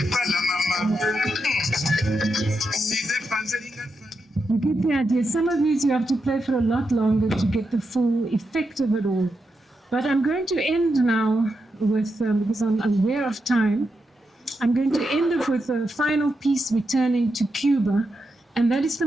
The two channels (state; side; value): normal; both; correlation 0.86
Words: pala mama, si des panzelinga. You get the idea. Some of these you have to play for a lot longer to get the full effect of it all. But I'm going to end now with, because I'm aware of time, I'm going to end up with a final piece returning to Cuba, and that is the